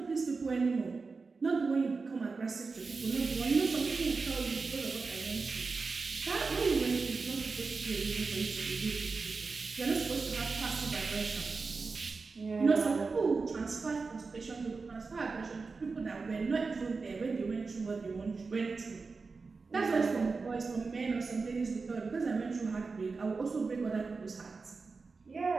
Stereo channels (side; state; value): left; quieter; 4.4 dB